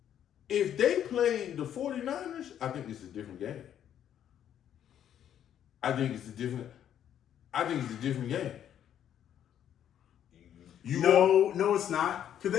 If they play the 49ers, I think it's a different game. I think it's a different game. No, it's not. Because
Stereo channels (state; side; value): quieter; right; 10.0 dB